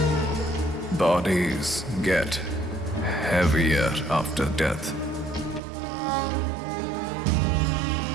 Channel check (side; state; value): left; drops out; at 5.6 s